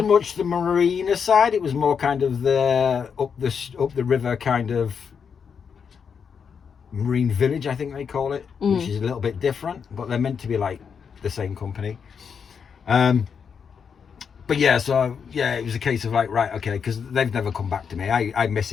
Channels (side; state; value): right; quieter; 6.6 dB